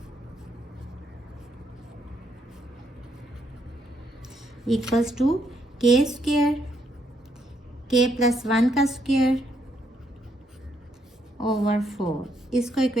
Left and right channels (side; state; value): both; normal; correlation 0.74